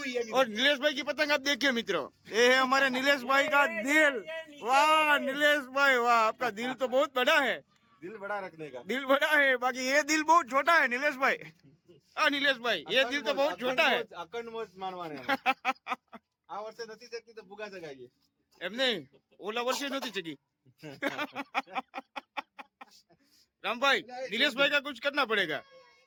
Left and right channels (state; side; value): identical; both; correlation 1.00